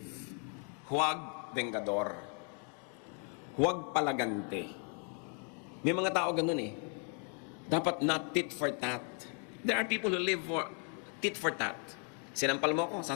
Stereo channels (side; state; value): right; quieter; 39.9 dB